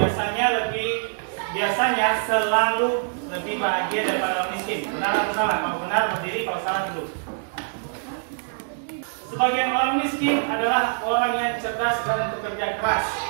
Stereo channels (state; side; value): silent; left; digital silence